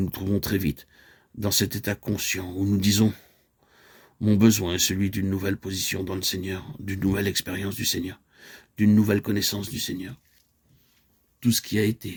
nous trouvons très vite dans cet état conscient où nous disons « Mon besoin est celui d'une nouvelle position dans le Seigneur, d'une nouvelle expérience du Seigneur, d'une nouvelle connaissance du Seigneur. » Tout ce qui a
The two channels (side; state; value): both; identical; correlation 1.00